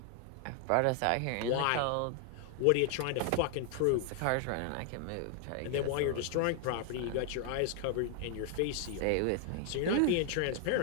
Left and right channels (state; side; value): different; both; correlation 0.00